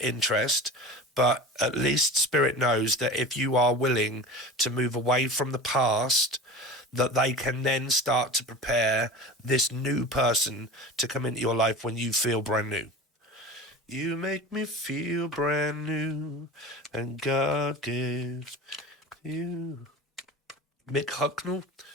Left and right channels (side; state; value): both; normal; correlation 0.34